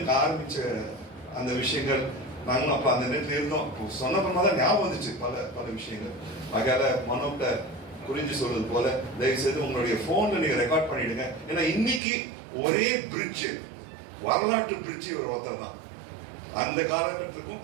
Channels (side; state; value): left; drops out; at 12.0 s